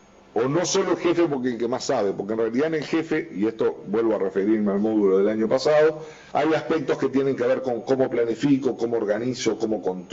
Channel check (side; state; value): both; identical; correlation 1.00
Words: o no solo el jefe porque el que más sabe, porque en realidad en el jefe, y esto vuelvo a referirme al módulo del año pasado, hay aspectos que tienen que ver con cómo planifico, cómo organizo, cómo